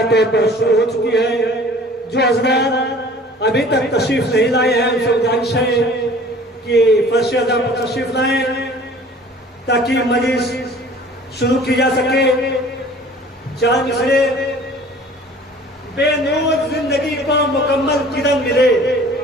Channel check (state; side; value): normal; both; correlation 0.48